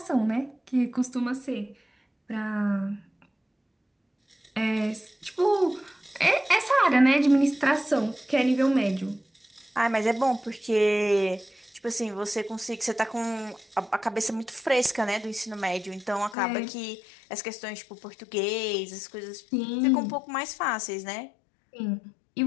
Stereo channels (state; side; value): drops out; right; at 16.4 s